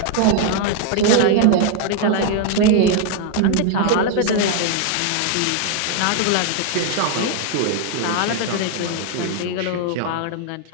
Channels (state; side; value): different; both; correlation 0.00